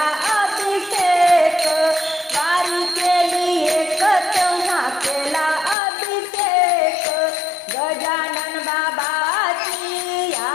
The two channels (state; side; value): drops out; right; at 5.8 s